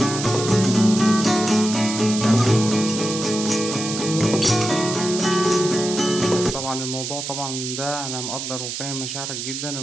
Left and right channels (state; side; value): noise; right; hiss, 6 dB below the sound